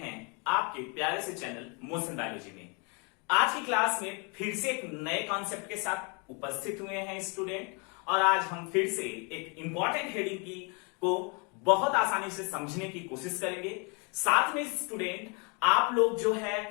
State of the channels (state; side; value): quieter; right; 33.5 dB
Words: आपके प्यारे से चैनल मोशन बायोलॉजी में। आज की क्लास में फिर से एक नए कॉन्सेप्ट के साथ उपस्थित हुए हैं स्टूडेंट, और आज हम फिर से एक इंपॉर्टेंट हेडिंग की को बहुत आसानी से समझने की कोशिश करेंगे। साथ में स्टूडेंट आप लोग जो है